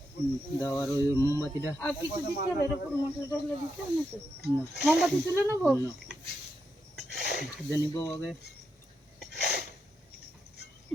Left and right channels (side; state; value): both; normal; correlation 0.84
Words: দাও, আর ওই মোমবাতিটা আর কিছু দিতে হবে? এরকম মশলা টশলা দিতে হবে না তো? না মোমবাতি তুলে নেবো? না খুঁজে নিব আগে,